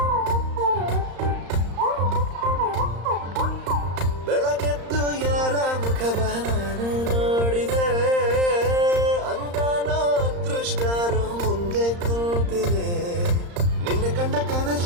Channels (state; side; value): late; left; 35 ms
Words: ಬೆಳಗೆದ್ದು ಯಾರ ಮುಖವ ನಾನು ನೋಡಿದೆ, ಅಂದಾನೋ ಅದೃಷ್ಟನೋ ಮುಂದೆ ಕೂತಿದೆ. ನಿನ್ನ ಕಂಡ